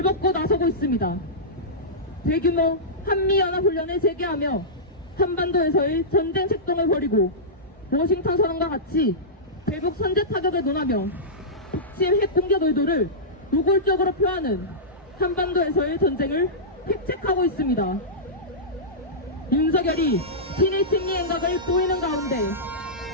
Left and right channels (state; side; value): normal; both; correlation -0.15